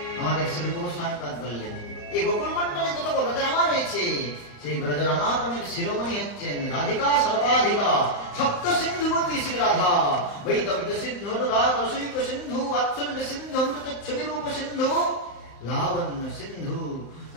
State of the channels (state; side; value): late; right; 35 ms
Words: আমাদের শ্রী গোস্বামীপাদ বললেন এই গোকুল মন্ডলে যত ব্রজরামা রয়েছে, সেই ব্রজরামাগণের শিরোমণি হচ্ছেন রাধিকা সর্বাধিকা সপ্ত সিন্ধুবতী শ্রী রাধা। বৈদব্য সিন্ধু অনুরাগ রসিক সিন্ধু বাৎসল্য সিন্ধু অমৃত ছবিরূপ সিন্ধু লাবণ্য সিন্ধু